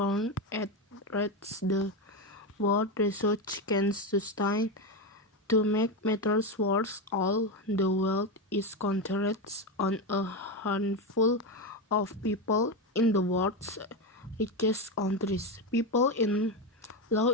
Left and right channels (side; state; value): both; normal; correlation 0.13